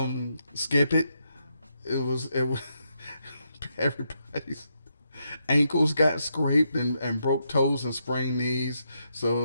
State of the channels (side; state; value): both; inverted; correlation -0.81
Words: Skip it. It was everybody's ankles got scraped and broke toes and sprained knees.